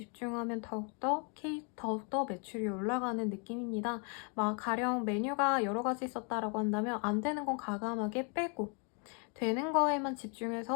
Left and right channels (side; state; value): right; quieter; 37.2 dB